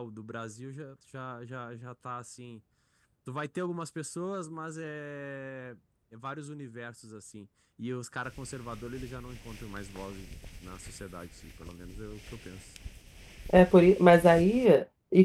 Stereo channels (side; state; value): both; identical; correlation 1.00